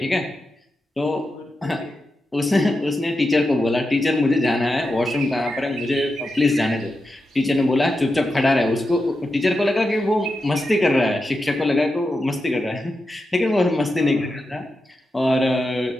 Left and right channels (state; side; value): normal; both; correlation 0.89